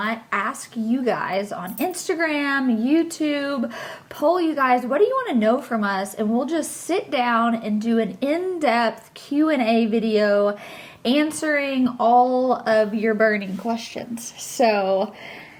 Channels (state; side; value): identical; both; correlation 1.00